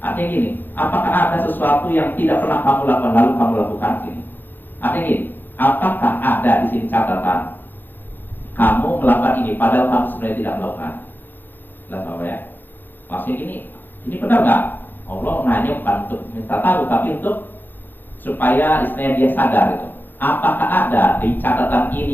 Artinya gini, apakah ada sesuatu yang tidak pernah kamu lakukan lalu kamu lakukan sini? Artinya gini, apakah ada di sini catatan kamu melakukan ini padahal kamu sebenarnya tidak melakukan? Lihat Bapak ya. Maksudnya gini, ini benar nggak? Allah nanya bukan untuk minta tahu, tapi untuk supaya istilahnya dia sadar itu. Apakah ada di catatan ini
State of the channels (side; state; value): right; late; 0.091 ms